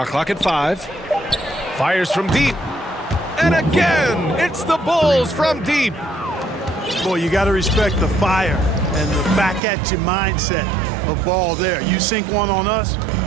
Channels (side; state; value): left; drops out; at 9.6 s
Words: clock at 5. Fires from deep. And again, it's the Bulls from deep. Boy, you got to respect the fire and the back-at-you mindset of Ball there. You sink one on us,